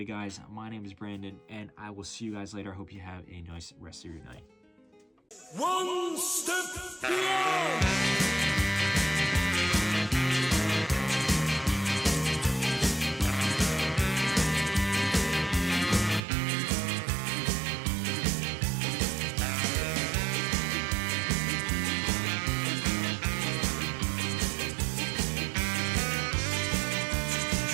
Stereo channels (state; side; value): drops out; left; at 16.2 s